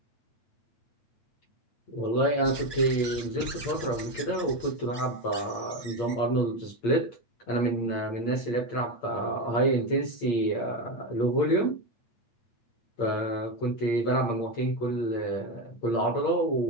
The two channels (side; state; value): right; late; 8.6 ms